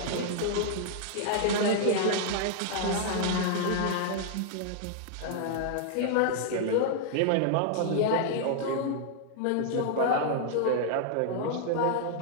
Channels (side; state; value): both; different; correlation -0.01